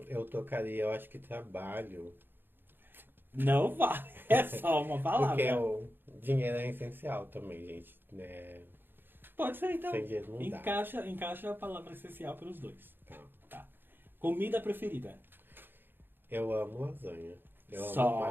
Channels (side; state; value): left; late; 0.098 ms